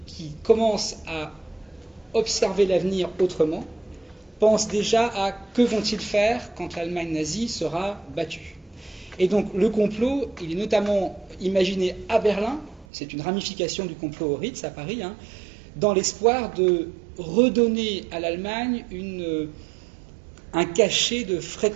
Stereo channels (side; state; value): left; drops out; at 12.9 s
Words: qui commencent à observer l'avenir autrement pensent déjà à que vont-ils faire quand l'Allemagne nazie sera battue. Et donc le complot, il est notamment imaginé à Berlin, c'est une ramification du complot au Ritz à Paris, dans l'espoir de redonner à l'Allemagne un cachet de